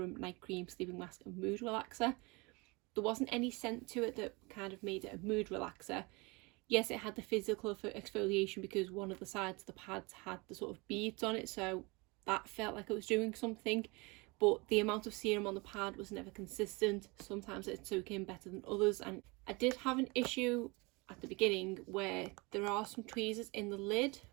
night cream, sleeping mask and mood relaxer. There wasn't any scent to it that kind of made it a mood relaxer. Yes, it had the physical for exfoliation because one of the sides of the pads had the sort of beads on it, so that felt like it was doing something, but the amount of serum on the pad was never consistent. Sometimes it'd soak in better than others, and I did have an issue at the beginning where there are some tweezers in the lid,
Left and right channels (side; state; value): left; quieter; 26.7 dB